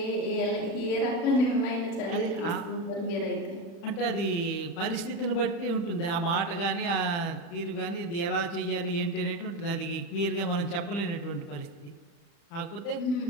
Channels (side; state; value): right; late; 35 ms